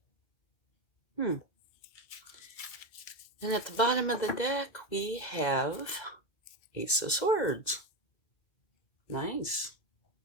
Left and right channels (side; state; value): right; late; 2.4 ms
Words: And at the bottom of the deck, we have Ace of Swords. Nice.